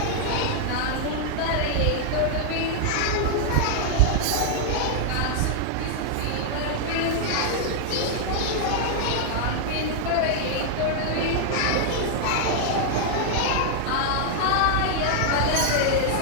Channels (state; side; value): different; both; correlation 0.00